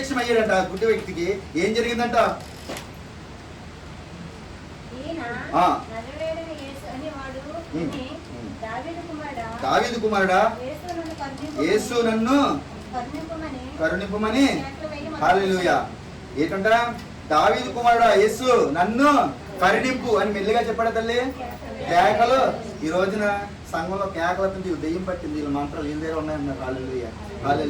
అయ్యాడంట ఆ గుడ్డి వ్యక్తికి. ఏం జరిగిందంట? దావీదు కుమారుడా, యేసు నన్ను కరుణింపమని. హల్లెలూయా. ఏంటంట? దావీదు కుమారుడా యేసు నన్ను కరుణింపు అని మెల్లిగా చెప్పాడు తల్లి. కేకలు. ఈ రోజున సంఘంలో కేకలు అవుతుంది. దెయ్యం పట్టింది. వీళ్ళ మంత్రాలు వీళ్ళ దగ్గర ఉన్నాయన్నారు. హల్లెలూయా.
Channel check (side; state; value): both; identical; correlation 1.00